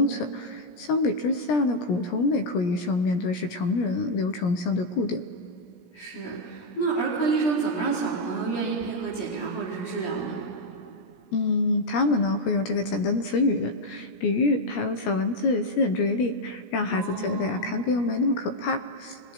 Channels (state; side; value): late; right; 17 ms